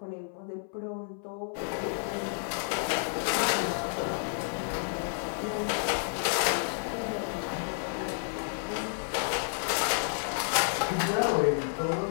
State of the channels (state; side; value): silent; right; 57 dB below the other